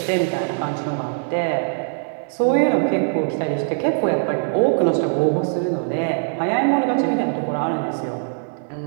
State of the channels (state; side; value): silent; left; 61 dB below the other